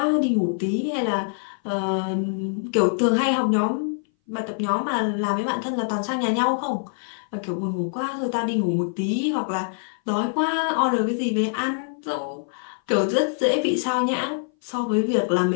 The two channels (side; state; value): right; silent; 59 dB below the other